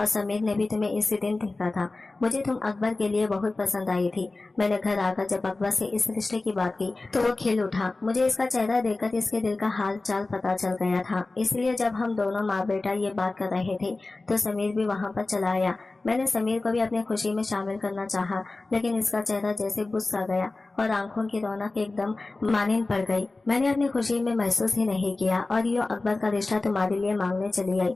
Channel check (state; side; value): quieter; right; 3.3 dB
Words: समीर ने भी तुम्हें इसी दिन देखा था। मुझे तुम अकबर के लिए बहुत पसंद आई थी। मैंने घर आकर जब अकबर से इस रिश्ते की बात की तो वो खिल उठा। मुझे इसका चेहरा देखकर इसके दिल का हाल चाल पता चल गया था। इसलिए जब हम दोनों माँ बेटा ये बात कर रहे थे तो समीर भी वहाँ पर चला आया। मैंने समीर को भी अपनी खुशी में शामिल करना चाहा, लेकिन इसका चेहरा जैसे बुझ सा गया और आंखों की रौनक एकदम मानिन पड़ गई। मैंने अपनी खुशी में महसूस ही नहीं किया और यूं अकबर का रिश्ता तुम्हारे लिए मांगने चली आई।